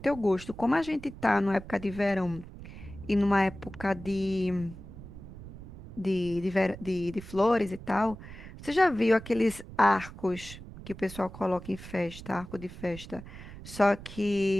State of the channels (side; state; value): right; noise; rumble, 14 dB below the sound